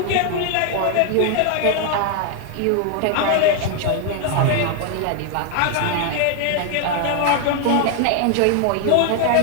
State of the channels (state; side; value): different; both; correlation 0.00